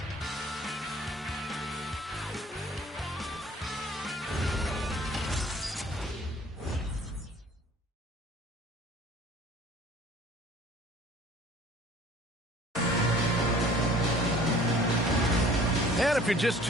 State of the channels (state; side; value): normal; both; correlation 0.51